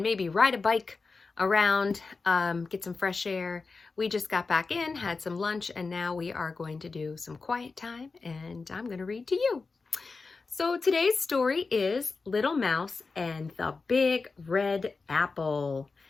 maybe ride a bike around, get some fresh air. We just got back in, had some lunch, and now we are going to do some quiet time, and I'm going to read to you. So today's story is Little Mouse and the Big Red Apple.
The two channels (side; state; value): right; quieter; 4.2 dB